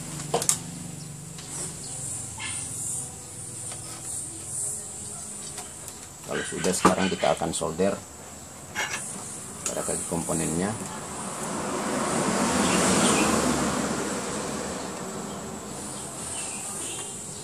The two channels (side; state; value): both; identical; correlation 1.00